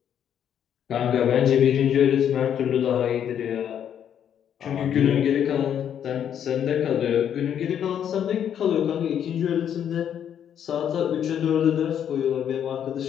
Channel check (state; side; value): quieter; right; 9.2 dB